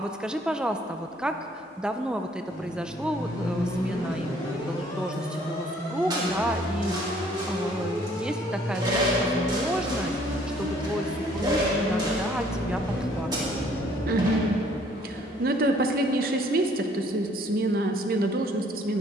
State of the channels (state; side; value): normal; both; correlation 0.61